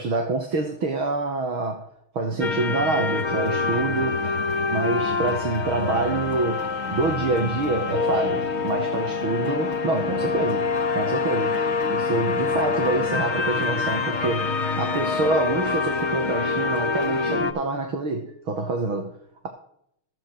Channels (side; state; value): left; late; 6.4 ms